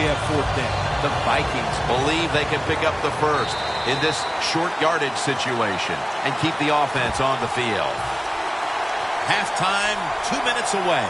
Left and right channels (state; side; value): identical; both; correlation 1.00